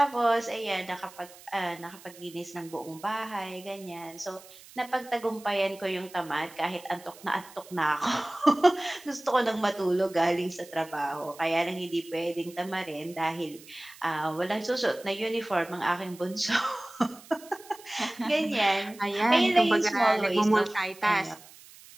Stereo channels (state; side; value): noise; right; hiss, 21 dB below the sound